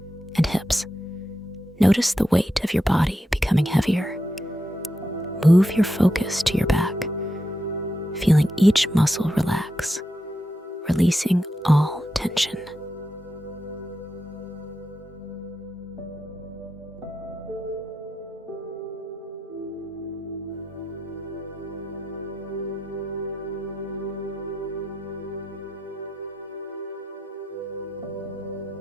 and hips. Notice the weight of your body becoming heavier. Move your focus to your back, feeling each muscle relax, releasing all tension.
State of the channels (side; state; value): both; normal; correlation 0.86